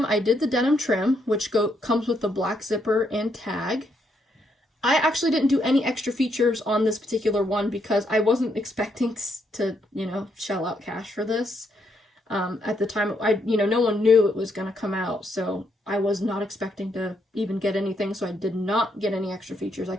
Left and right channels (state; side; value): normal; both; correlation 0.76